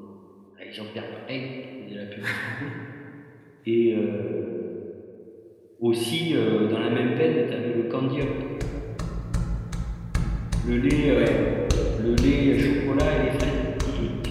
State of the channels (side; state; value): both; identical; correlation 1.00